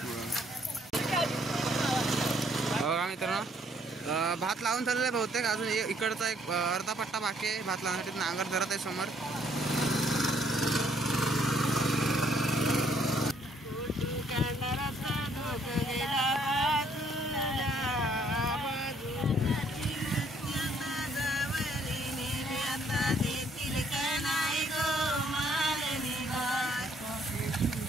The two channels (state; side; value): normal; both; correlation 0.66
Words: बघा मित्रांनो, भात लावून झालेला आहे बहुतेक. अजून इकडचा एक अर्धा पट्टा बाकी आहे भात लावण्यासाठी. नांगर धरत आहे समोर.